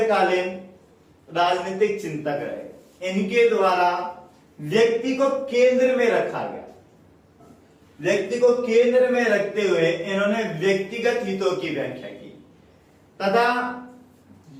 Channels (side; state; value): both; identical; correlation 1.00